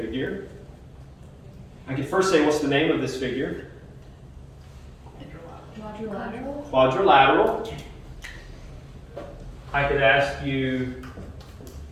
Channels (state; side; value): identical; both; correlation 1.00